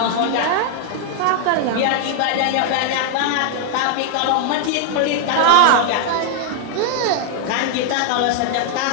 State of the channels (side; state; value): both; different; correlation 0.00